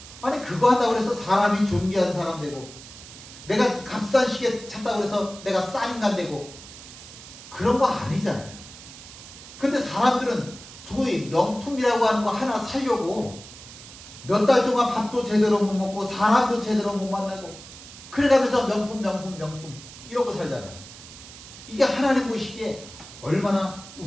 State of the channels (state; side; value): noise; right; hiss, 16 dB below the sound